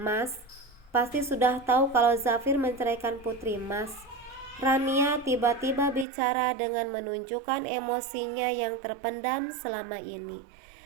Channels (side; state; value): left; drops out; at 6.1 s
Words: pasti sudah tahu kalau Zafir menceraikan putri Mas. Rania tiba-tiba bicara dengan menunjukkan emosinya yang terpendam selama ini.